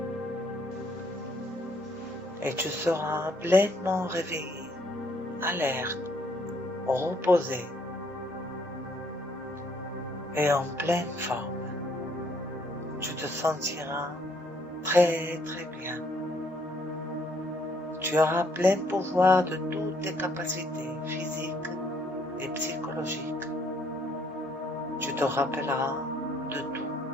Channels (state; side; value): normal; both; correlation 0.66